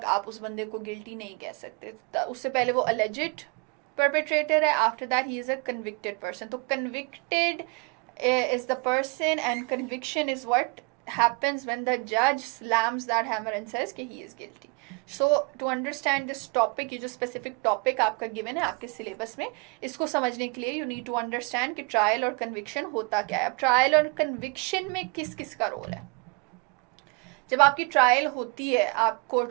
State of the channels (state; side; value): quieter; left; 30.6 dB